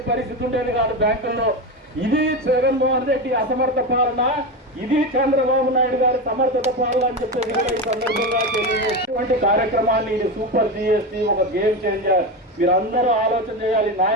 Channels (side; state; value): both; normal; correlation 0.18